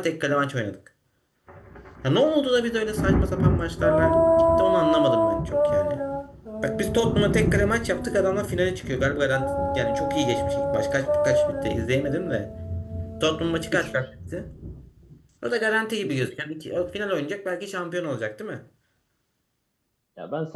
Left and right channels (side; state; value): both; identical; correlation 1.00